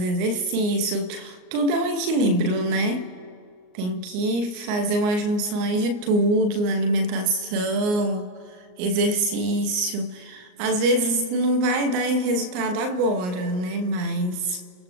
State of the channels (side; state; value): left; late; 38 ms